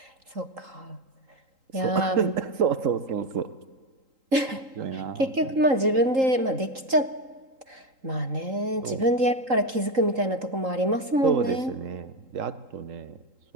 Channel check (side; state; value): left; late; 3.8 ms